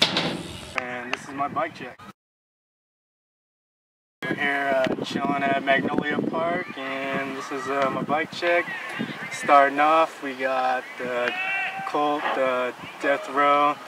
and this is my bike check. We're here chilling at Magnolia Park, and this is my bike check. Starting off, we got the Colt Death Row.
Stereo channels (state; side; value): identical; both; correlation 1.00